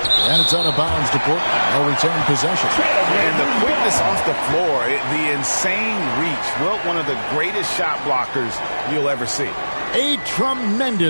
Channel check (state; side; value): inverted; both; correlation -1.00